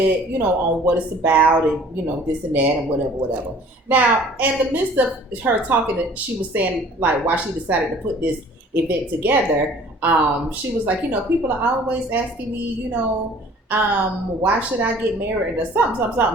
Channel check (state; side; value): normal; both; correlation 0.51